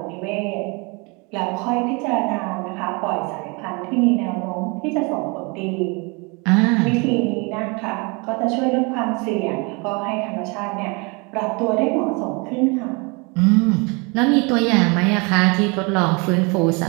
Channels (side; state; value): left; quieter; 29.8 dB